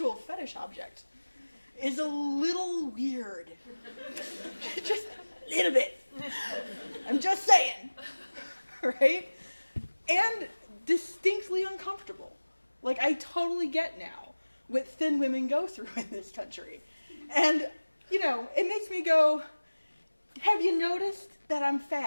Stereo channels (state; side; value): inverted; both; correlation -1.00